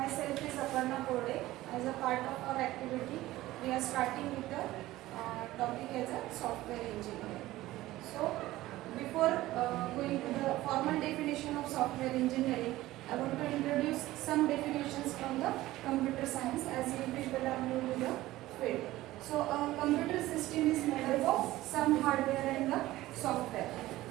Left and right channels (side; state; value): left; quieter; 16.6 dB